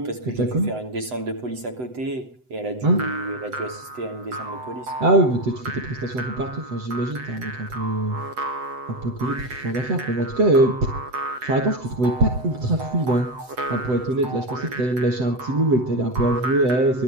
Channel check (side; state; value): left; late; 7.9 ms